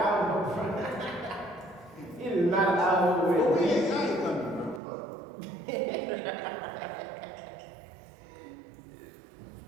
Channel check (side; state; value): left; drops out; at 4.8 s